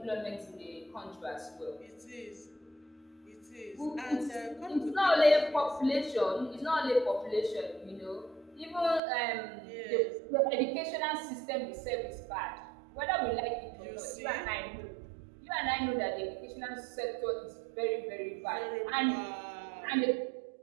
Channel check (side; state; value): left; drops out; at 9.0 s